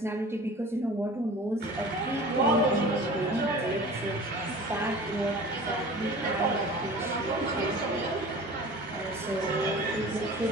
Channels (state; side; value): normal; both; correlation 0.40